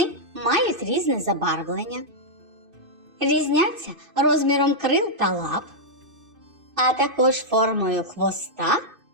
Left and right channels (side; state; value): left; late; 2.6 ms